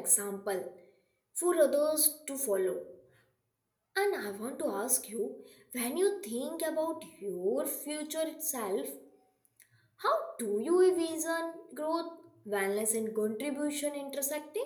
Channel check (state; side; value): identical; both; correlation 1.00